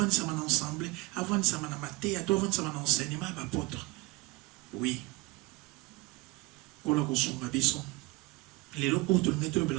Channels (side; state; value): left; quieter; 23.1 dB